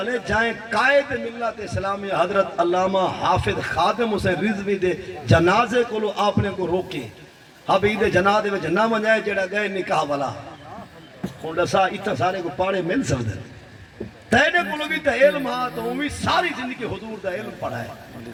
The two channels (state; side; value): identical; both; correlation 1.00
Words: ہے جائیں قائد ملت اسلامی حضرت علامہ حافظ خادم حسین رضوی دے جنازے کو لو آپ نے کو روکے ابھی دے جنازے میں نہ منجائے جڑا گئے نکاح والا ہوں دسا اتنا سارے کو پاڑے مل سکتے تیرے کو بھی تا علم ہاں تو ہمیں ساری زندگی حضور دا علم پڑھا ہے